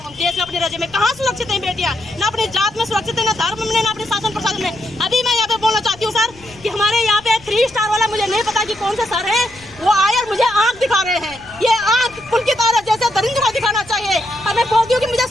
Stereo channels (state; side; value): noise; left; rumble, 22 dB below the sound